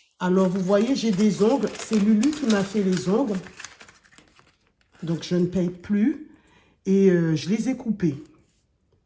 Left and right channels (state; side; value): identical; both; correlation 1.00